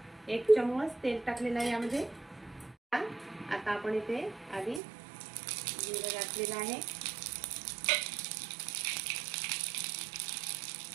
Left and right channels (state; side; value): drops out; left; at 4.8 s